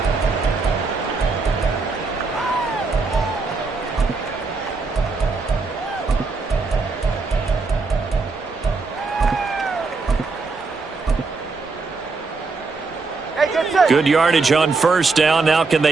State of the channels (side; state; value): left; quieter; 4.1 dB